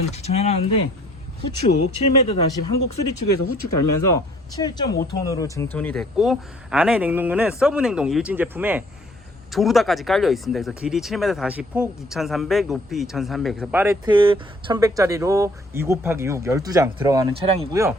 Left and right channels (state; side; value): normal; both; correlation 0.59